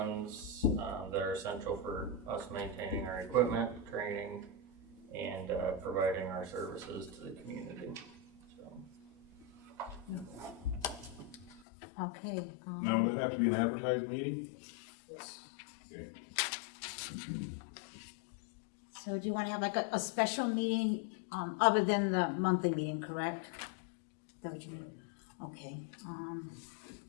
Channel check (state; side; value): drops out; right; at 11.7 s